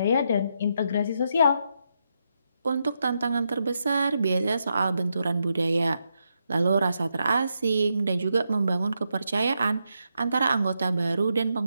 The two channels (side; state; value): both; inverted; correlation -0.82